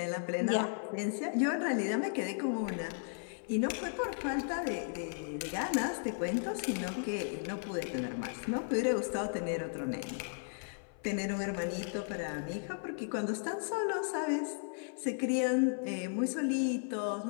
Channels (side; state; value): right; silent; 54 dB below the other